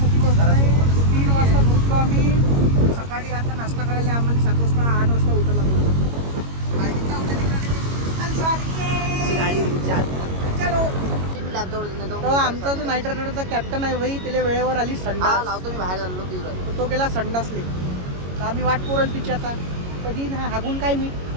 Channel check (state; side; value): late; left; 22 ms